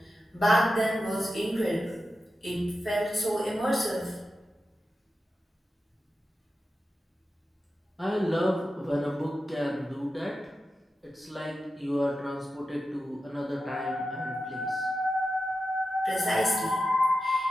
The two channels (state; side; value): normal; both; correlation 0.91